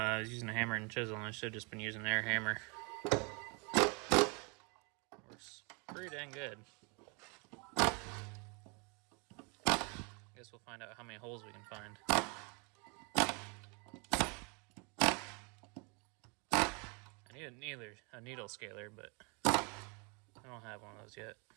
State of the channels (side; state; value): left; quieter; 32.6 dB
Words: was using a hammer and chisel, and I should have just been using an air hammer. Works pretty dang good. Guess we'll find out how many holes we can find. I need a needle scaler, but I don't have one of those yet.